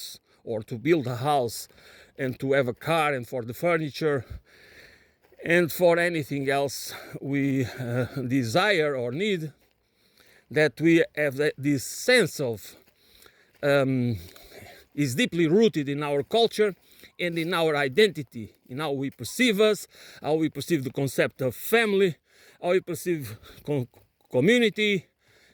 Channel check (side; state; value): both; identical; correlation 1.00